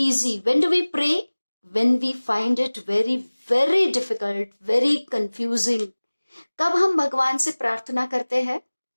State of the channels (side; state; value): both; inverted; correlation -1.00